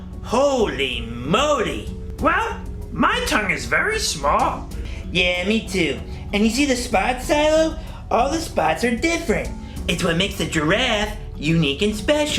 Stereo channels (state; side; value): identical; both; correlation 1.00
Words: Holy moly. Well, my tongue is very small. Yeah, me too. And you see the spots, Cilo? All the spots are different. It's what makes the giraffe unique and